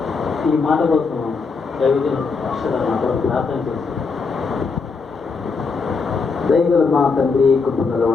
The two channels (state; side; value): quieter; right; 4.7 dB